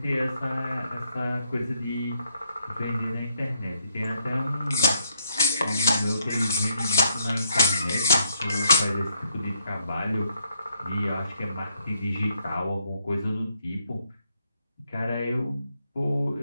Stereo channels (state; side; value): inverted; both; correlation -0.74